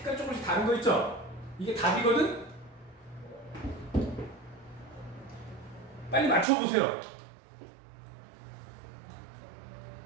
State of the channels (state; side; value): drops out; left; at 6.5 s